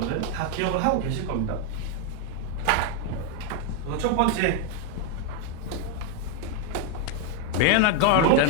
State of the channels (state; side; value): different; both; correlation 0.01